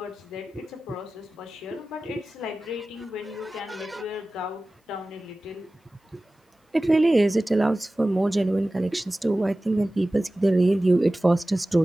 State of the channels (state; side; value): normal; both; correlation 0.97